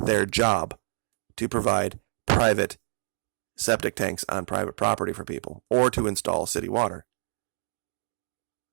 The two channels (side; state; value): left; silent; digital silence